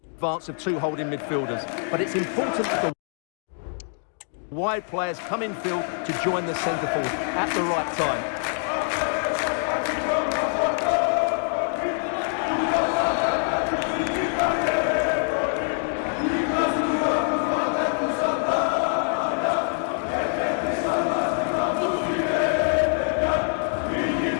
advance of two holding midfielders. But it's important that the wide players come in field to join the centre forward at the right time.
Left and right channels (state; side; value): silent; right; 62 dB below the other